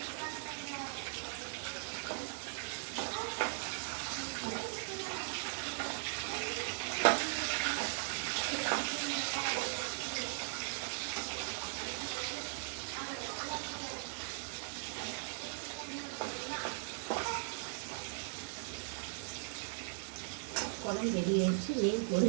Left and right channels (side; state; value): left; silent; digital silence